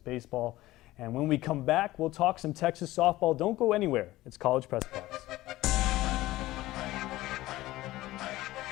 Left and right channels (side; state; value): right; quieter; 17.1 dB